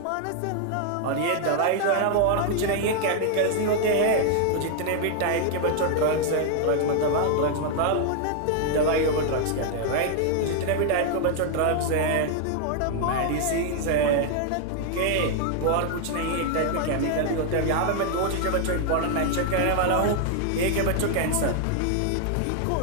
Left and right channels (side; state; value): both; different; correlation 0.00